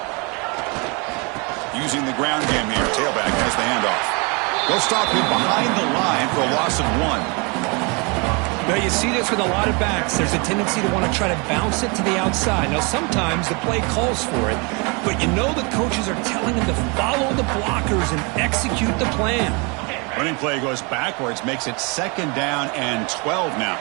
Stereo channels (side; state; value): left; quieter; 31.0 dB